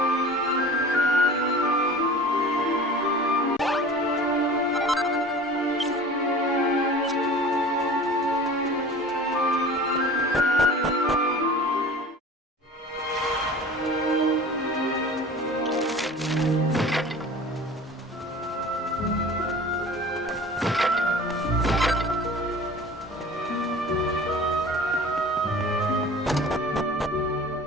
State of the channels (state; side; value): normal; both; correlation 0.41